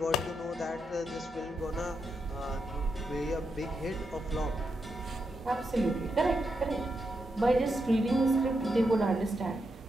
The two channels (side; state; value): both; normal; correlation 0.84